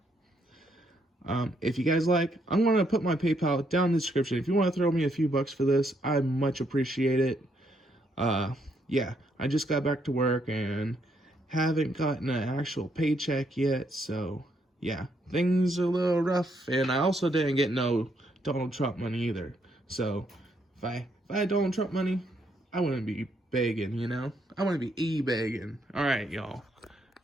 If you guys like, I'm going to put my PayPal down in the description. If you want to throw me a few bucks for this, I much appreciate it. Yeah, I just got back to work and haven't gotten an actual paycheck yet. So, yeah, things are a little rough. And I also didn't get no Donald Trump money either. So, if I had Donald Trump money, I wouldn't be begging, you know? I wouldn't be e-begging. Alright, y'all.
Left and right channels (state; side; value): normal; both; correlation 0.74